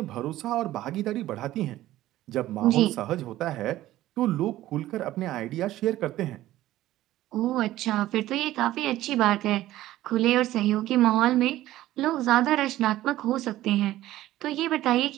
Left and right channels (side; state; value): left; quieter; 14.9 dB